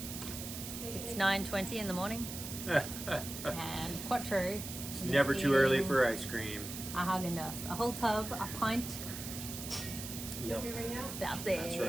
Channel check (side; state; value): right; noise; hiss, 8 dB below the sound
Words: It's 9:20 in the morning and Quattro. It's never too early for ice cream. A Haagen-Dazs, a whole tub, a pint. Yep. That's it. That's